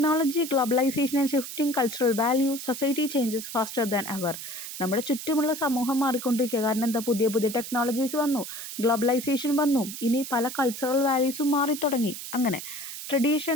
globalisation and shifting cultural value, society changes faster than ever. നമ്മുടെ ചുറ്റുമുള്ള സമൂഹം മാറിക്കൊണ്ടിരിക്കുക. കാരണം എന്താ, പുതിയ പുതിയ ടെക്നോളജീസ് വന്നു, ഗ്ലോബലൈസേഷൻ വന്നു, ഇനി പല കൾച്ചറൽ വാല്യൂസും മാറിത്തുടങ്ങി. അങ്ങനെ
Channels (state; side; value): noise; right; hiss, 9 dB below the sound